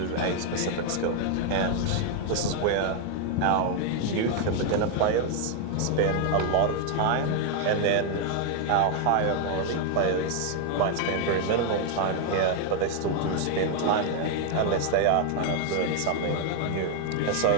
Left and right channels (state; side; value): different; both; correlation 0.01